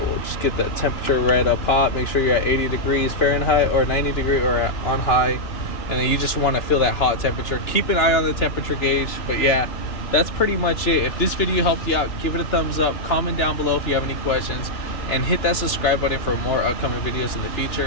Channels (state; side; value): late; right; 3.0 ms